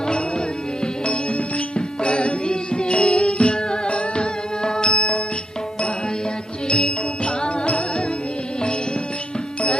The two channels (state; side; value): normal; both; correlation 0.80